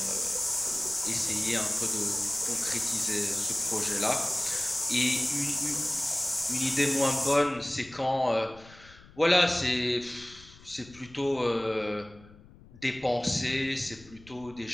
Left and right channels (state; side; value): noise; left; rumble, 22 dB below the sound